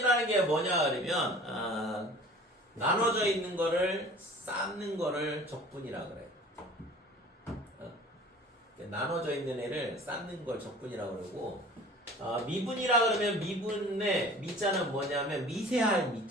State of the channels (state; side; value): normal; both; correlation 0.44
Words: 게 뭐냐 그러면 나눠져 있는 거를 쌓는 거를 적분이라 그래요. 나눠져 있는 애를 쌓는 걸 적분이라고 그러고 미분이라 그러면 미분의 미자는 뭐냐면 미세할